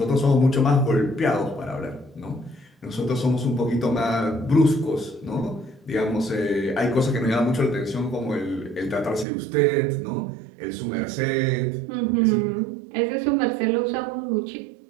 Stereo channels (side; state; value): left; drops out; at 9.2 s